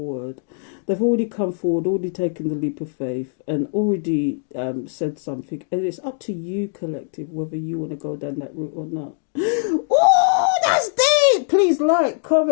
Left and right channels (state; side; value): silent; right; digital silence